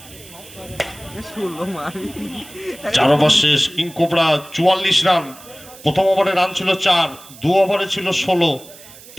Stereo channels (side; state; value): right; noise; hiss, 20 dB below the sound